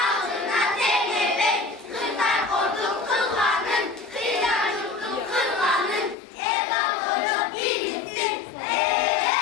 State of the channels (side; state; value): right; drops out; at 6.2 s